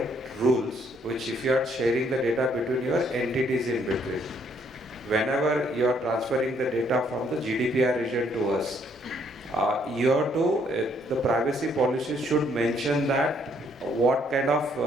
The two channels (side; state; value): both; normal; correlation 0.68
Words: rules, which if you are sharing the data between your entities in between. Whenever you are transferring the data from the GDPR region to us, you have to, the privacy policies should mention that what kind of